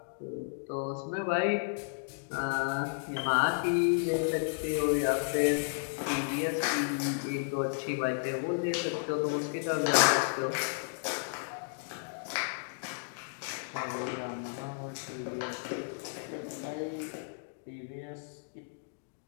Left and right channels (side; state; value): right; silent; digital silence